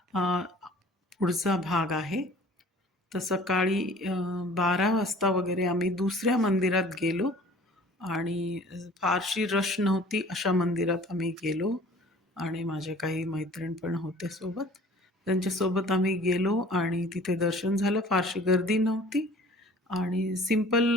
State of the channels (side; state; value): both; normal; correlation 0.49